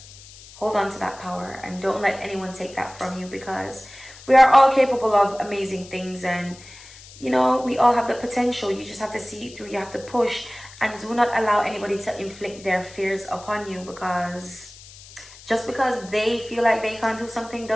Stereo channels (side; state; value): left; noise; hiss, 20 dB below the sound